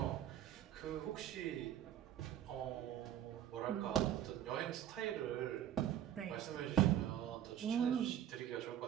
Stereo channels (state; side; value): quieter; left; 10.9 dB